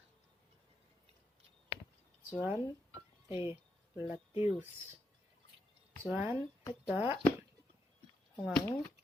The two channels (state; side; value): normal; both; correlation 0.82